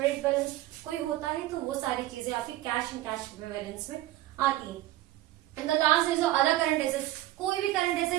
balance कोई होता है तो वो सारी चीजें आपकी कैश एंड कैश इक्विवेलेंट्स में आती है। And the last is other current assets. कोई भी करंट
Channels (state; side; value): quieter; left; 15.6 dB